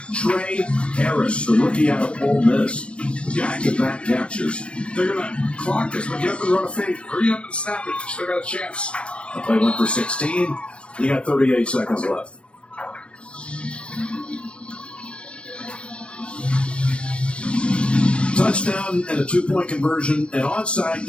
Trey Harris, the rookie out of Ole Miss. Back-to-back captures. They're going to clock this, but get up and run a fake. Hurry up and snap it. Still got a chance. The play went for 16. You got 38 seconds left. Touchdown and a 2-point conversion, an onside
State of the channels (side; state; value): right; late; 0.059 ms